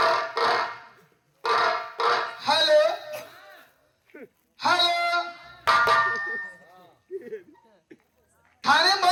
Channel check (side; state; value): both; identical; correlation 1.00